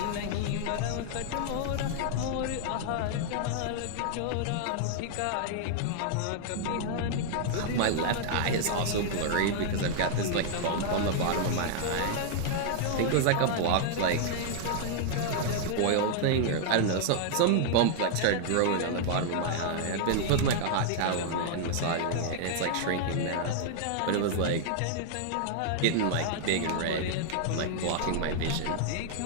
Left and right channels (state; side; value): different; both; correlation -0.01